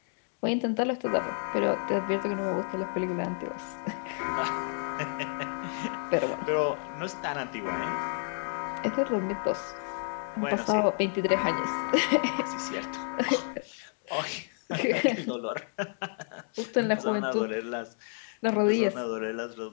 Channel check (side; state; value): right; silent; 58 dB below the other